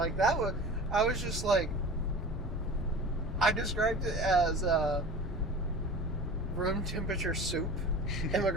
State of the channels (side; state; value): both; normal; correlation 0.37